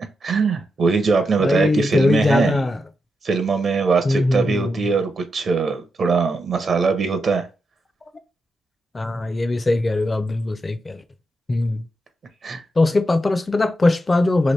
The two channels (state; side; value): normal; both; correlation 0.86